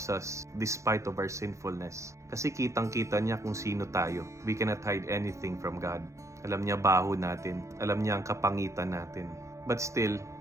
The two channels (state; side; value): late; left; 0.15 ms